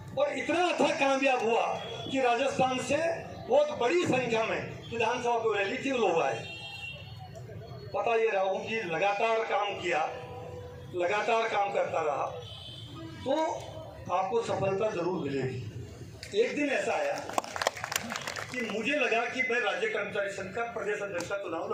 और इतना अच्छा कामयाब हुआ कि राजस्थान से बहुत बड़ी संख्या में विधानसभा को रैली थी, लोग आए। पता ये रहा हूँ कि लगातार काम किया, लगातार काम करता रहा तो आपको सफलता जरूर मिलेगी। एक दिन ऐसा आया कि मुझे लगा कि मैं राज्य कर्मचारी संघ का प्रदेश अध्यक्ष का चुनाव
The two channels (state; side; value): identical; both; correlation 1.00